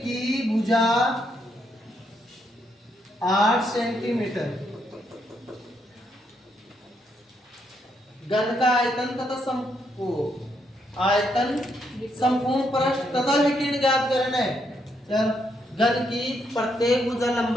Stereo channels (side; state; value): both; normal; correlation 0.76